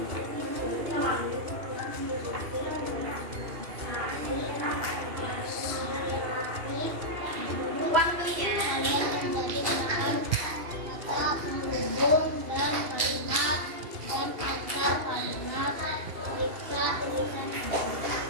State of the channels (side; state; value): left; late; 2.8 ms